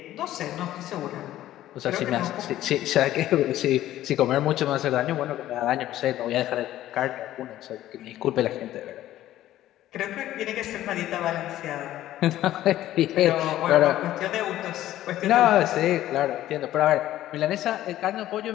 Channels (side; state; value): right; quieter; 13.7 dB